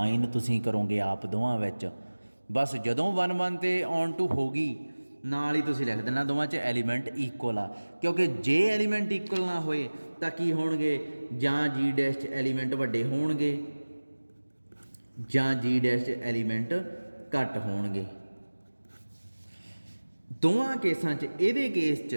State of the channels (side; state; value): both; inverted; correlation -1.00